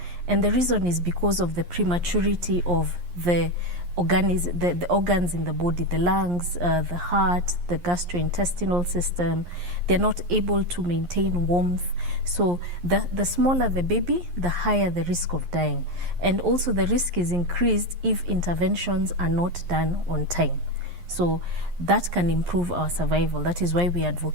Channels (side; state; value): left; late; 11 ms